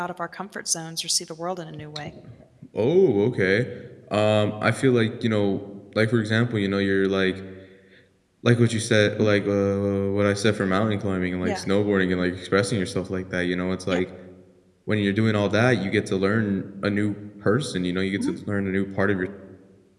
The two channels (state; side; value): identical; both; correlation 1.00